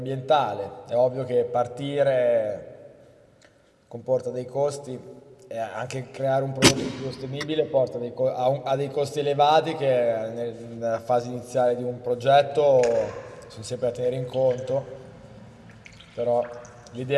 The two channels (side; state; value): both; identical; correlation 1.00